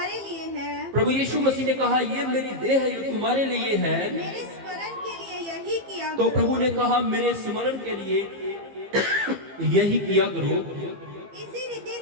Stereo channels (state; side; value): late; left; 15 ms